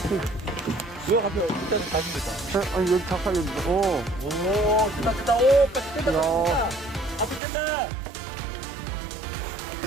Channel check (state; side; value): drops out; left; at 7.4 s